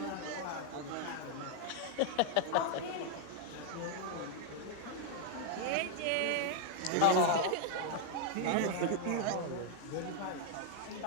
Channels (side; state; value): both; different; correlation -0.01